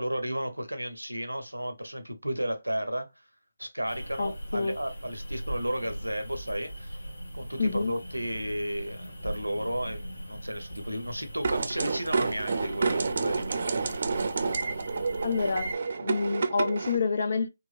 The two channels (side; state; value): both; inverted; correlation -0.89